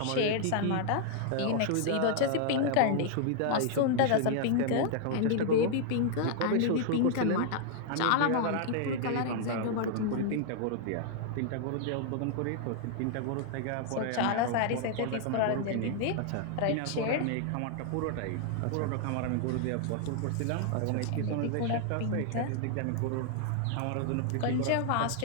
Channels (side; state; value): both; different; correlation 0.00